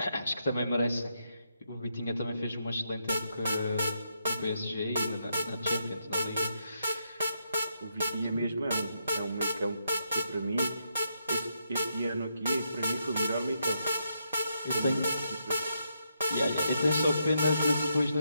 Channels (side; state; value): both; inverted; correlation -0.80